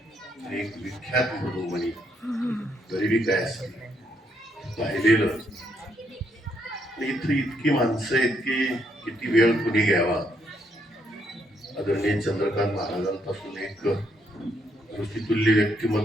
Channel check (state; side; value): normal; both; correlation 0.74